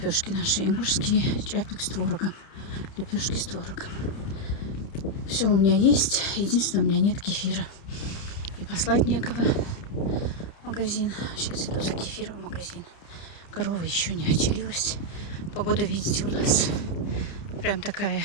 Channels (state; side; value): late; right; 29 ms